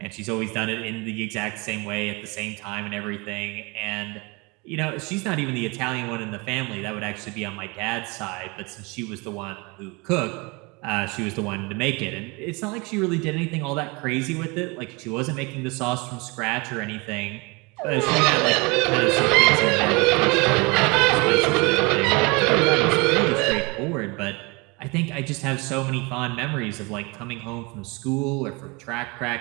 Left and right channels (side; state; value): left; quieter; 27.4 dB